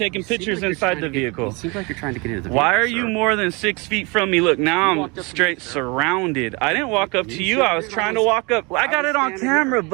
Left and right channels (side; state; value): left; quieter; 28.4 dB